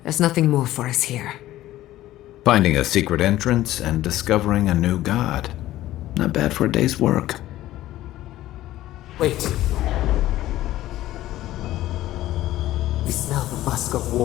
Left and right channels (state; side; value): quieter; right; 14.9 dB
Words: There's nothing more for us here. Finding a secret entrance and discovering a new god. Not bad for a day's work. Wait. We smell the musk of